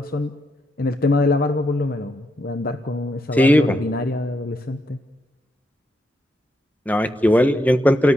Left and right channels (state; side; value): normal; both; correlation 0.80